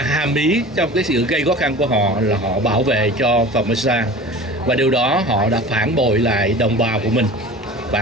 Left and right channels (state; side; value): normal; both; correlation 0.38